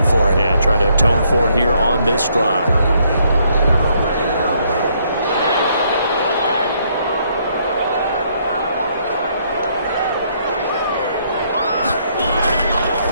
for it. Yeah, try to atone for it here on this drive.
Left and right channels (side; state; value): both; inverted; correlation -0.70